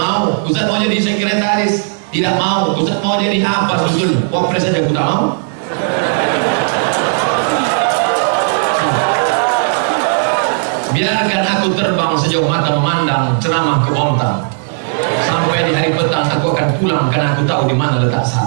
Ustaz mau jadi sekretaris, tidak mau. Ustaz mau jadi apa sebetulnya? Wapres saja aku tak mau. Biarkan aku terbang sejauh mata memandang, ceramah ke Bontang. Sampai di hari petang aku akan pulang karena aku tahu di mana letak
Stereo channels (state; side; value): silent; left; 68 dB below the other